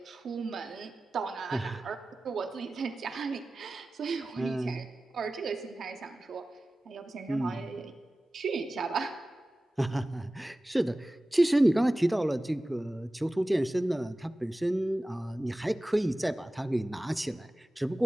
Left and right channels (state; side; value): normal; both; correlation 0.96